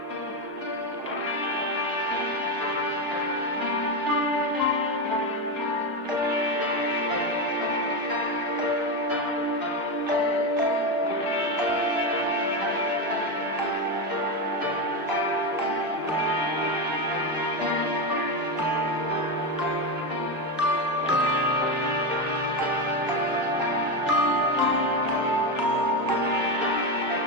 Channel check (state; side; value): normal; both; correlation 0.12